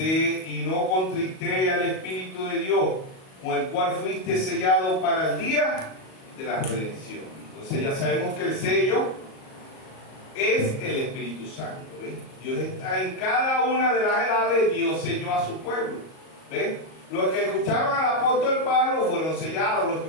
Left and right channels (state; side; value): late; right; 38 ms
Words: y no contristéis al Espíritu de Dios, con el cual fuiste sellado para el día de la redención. Entonces ya sabemos que el sello es el Espíritu Santo. ¿Ves? Dios está en cada una de las edades. Dios selló a su pueblo. ¿Ves? Los que escucharon al apóstol Pablo fueron sellados, los que